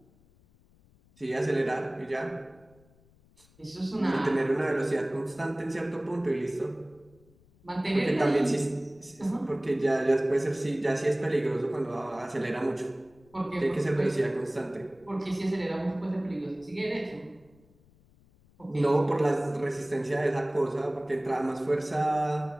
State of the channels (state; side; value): noise; left; rumble, 30 dB below the sound